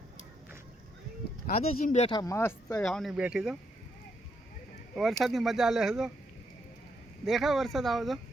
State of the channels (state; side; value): normal; both; correlation 0.77